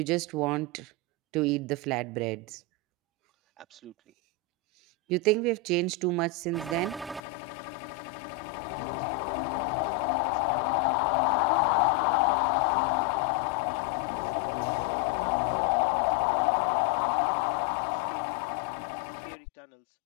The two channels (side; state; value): right; drops out; at 7.2 s